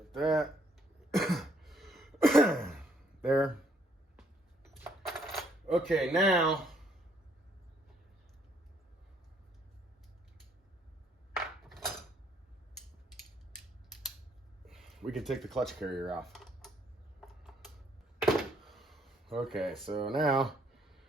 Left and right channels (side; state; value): both; normal; correlation 0.67